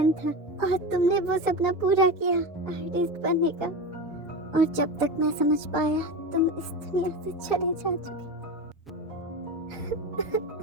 था और तुमने वो सपना पूरा किया आर्टिस्ट बनने का। और जब तक मैं समझ पाया तुम इस दुनिया से चले जा चुके।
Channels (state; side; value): normal; both; correlation 0.23